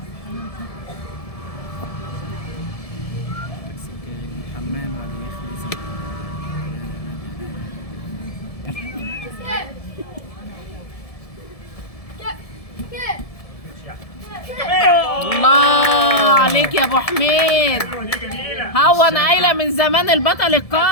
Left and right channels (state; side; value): late; right; 1.7 ms